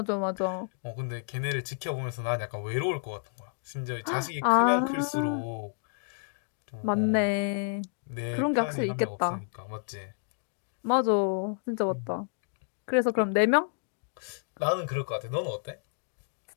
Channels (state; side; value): silent; right; digital silence